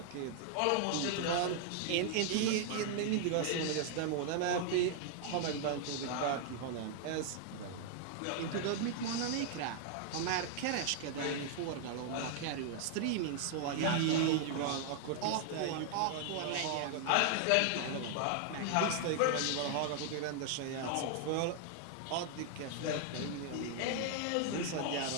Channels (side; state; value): both; different; correlation 0.00